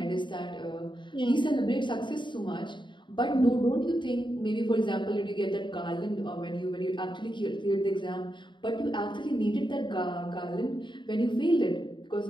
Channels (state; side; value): late; right; 0.23 ms